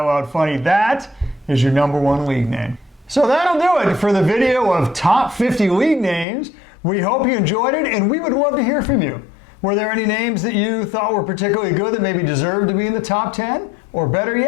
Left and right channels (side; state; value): right; drops out; at 6.2 s